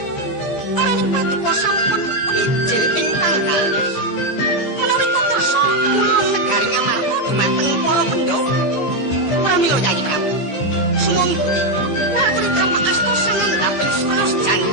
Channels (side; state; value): right; late; 15 ms